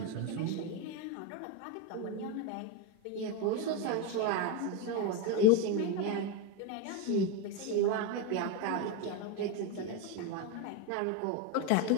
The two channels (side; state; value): both; different; correlation 0.03